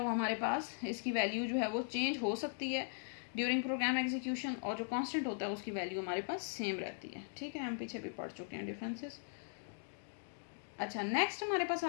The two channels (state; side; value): silent; right; digital silence